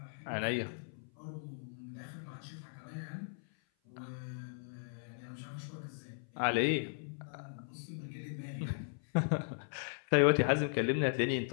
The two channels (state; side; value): silent; right; 53 dB below the other